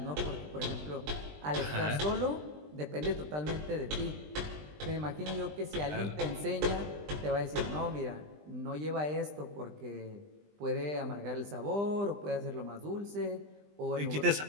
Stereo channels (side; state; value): left; late; 20 ms